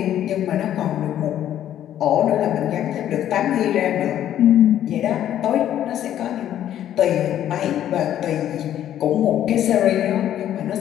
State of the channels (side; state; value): right; quieter; 11.3 dB